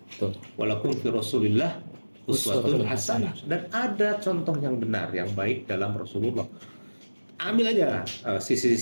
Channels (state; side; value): inverted; both; correlation -1.00